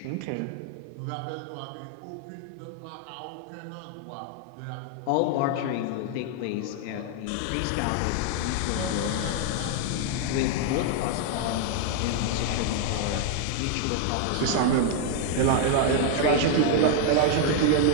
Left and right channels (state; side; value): different; both; correlation 0.00